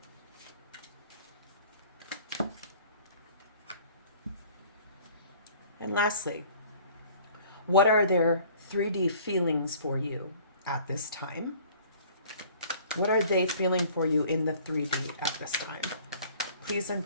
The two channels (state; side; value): inverted; both; correlation -0.51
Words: And lastly, what are their 3D feelings for you at this time? What are they feeling for you in the 3D at this time? Please and